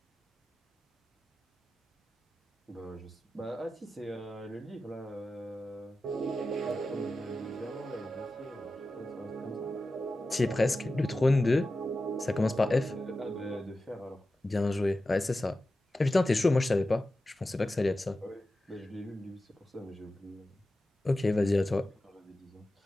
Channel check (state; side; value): normal; both; correlation 0.93